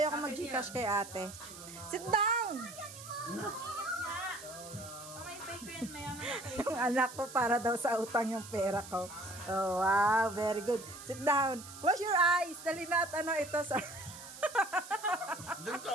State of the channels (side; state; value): right; noise; hiss, 14 dB below the sound